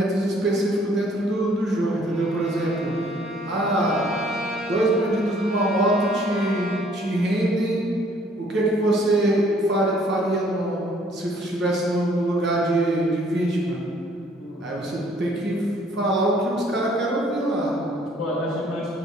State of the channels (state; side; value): normal; both; correlation 0.61